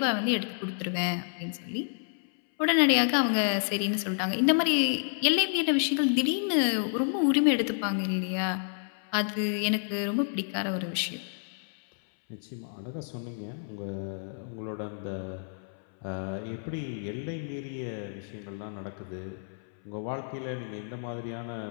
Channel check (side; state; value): right; silent; 58 dB below the other